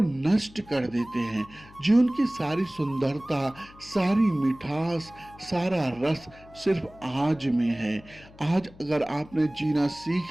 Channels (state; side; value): noise; left; hum, 22 dB below the sound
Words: नष्ट कर देते हैं। जीवन की सारी सुंदरता, सारी मिठास, सारा रस सिर्फ आज में है। आज अगर आपने जीना